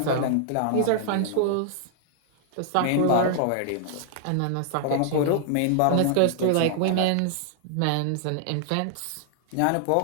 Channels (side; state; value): both; different; correlation 0.00